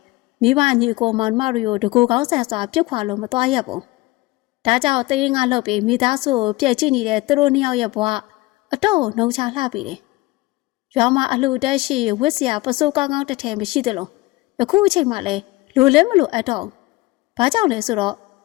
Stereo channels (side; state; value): right; quieter; 20.6 dB